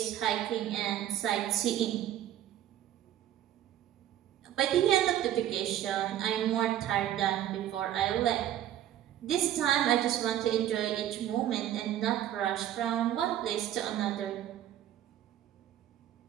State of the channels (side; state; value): left; quieter; 11.8 dB